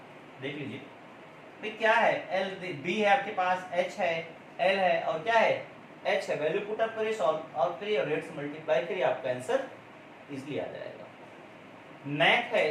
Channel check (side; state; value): both; identical; correlation 1.00